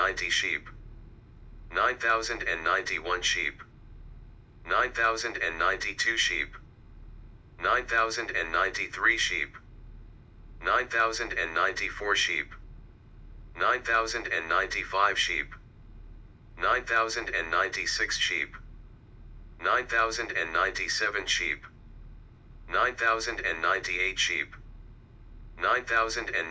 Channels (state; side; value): identical; both; correlation 1.00